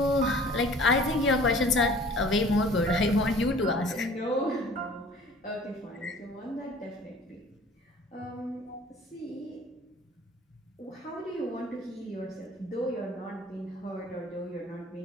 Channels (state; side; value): normal; both; correlation 0.49